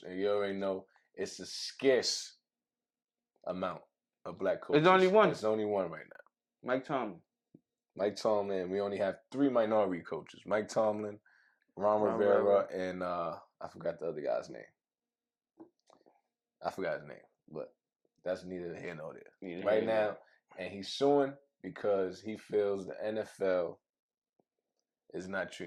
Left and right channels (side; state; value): both; identical; correlation 1.00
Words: and you already know it's a scarce amount of black coaches. There's only one. There's only one right now. Mike Tomlin. Mike Tomlin. We only have 3 minority coaches: Mike Tomlin, Ron Rivera, and I forgot the other guy's name. I forgot his name, but that's neither here nor there. Right now, and he's suing because he feels the NFL is not